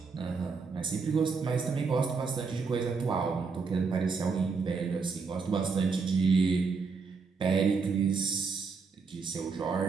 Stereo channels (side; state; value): left; quieter; 4.9 dB